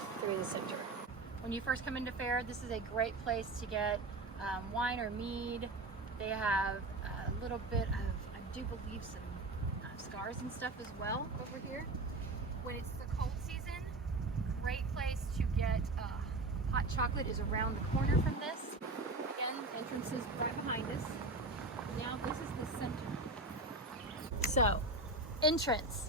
through the center. When you first come into Fair, this is a great place to get wine or mead, They have a little bit of, I do believe, some scars and stuff as well over here. When it's the cold season, great place to get hot chocolate is around the corner from this. Again, entrance is right behind us. Now this is the center. So,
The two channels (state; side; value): quieter; left; 3.0 dB